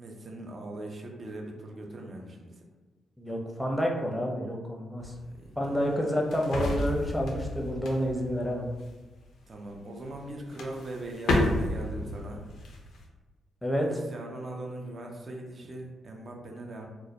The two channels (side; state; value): both; normal; correlation 0.83